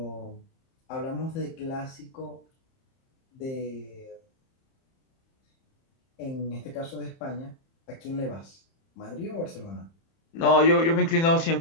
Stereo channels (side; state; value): right; late; 30 ms